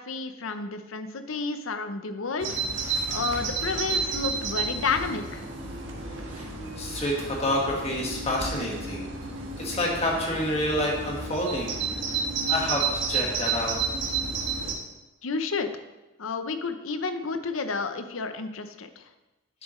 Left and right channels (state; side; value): normal; both; correlation 0.15